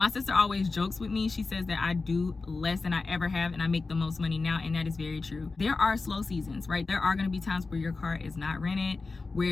My sister always jokes with me. She says that I do less than I ever have and I make the most money now, and that is very true. There are slow seasons, right? There are going to be times where your car is not rented,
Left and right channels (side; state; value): right; quieter; 3.9 dB